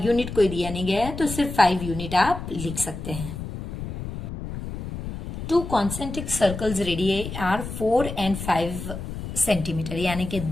यूनिट कोई दिया नहीं गया है तो सिर्फ 5 यूनिट आप लिख सकते हैं। 2 concentric circles radii are 4 and 5 centimetre, यानी कि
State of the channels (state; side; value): noise; left; rumble, 8 dB below the sound